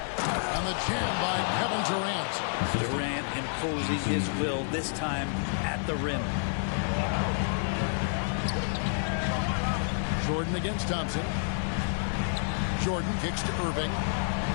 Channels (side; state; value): right; silent; 58 dB below the other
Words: the jam by Kevin Durant. Durant imposing his will, this time at the rim. Jordan against Thompson. Jordan kicks to Irving.